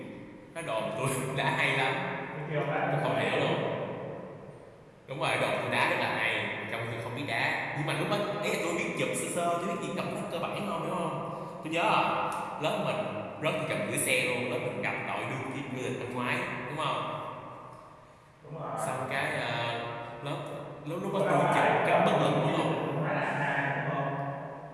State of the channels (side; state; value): both; identical; correlation 1.00